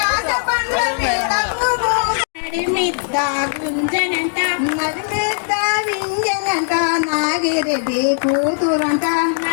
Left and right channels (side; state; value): right; silent; 66 dB below the other